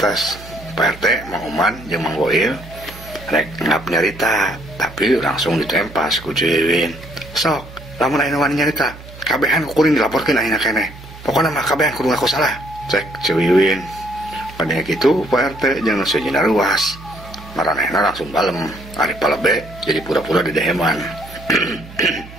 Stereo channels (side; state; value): right; noise; hum, 17 dB below the sound